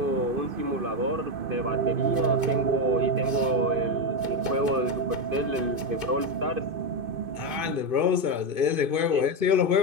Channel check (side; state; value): left; late; 2.5 ms